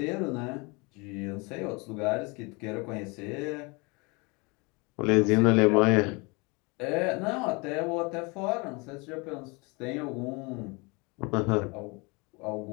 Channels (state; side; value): quieter; right; 28.5 dB